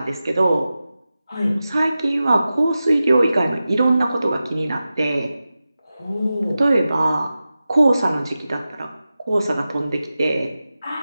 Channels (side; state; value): both; inverted; correlation -0.94